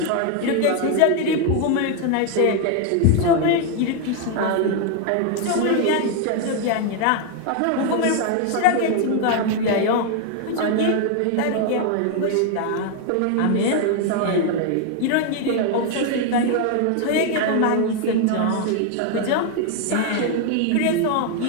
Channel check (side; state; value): both; different; correlation 0.00